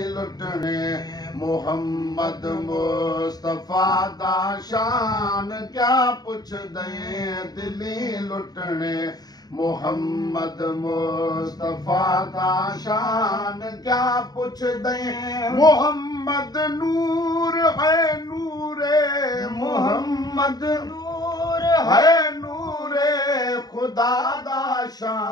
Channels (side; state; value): right; late; 0.19 ms